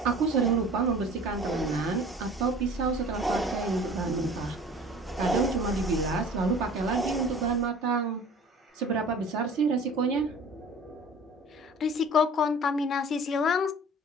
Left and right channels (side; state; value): both; normal; correlation 0.45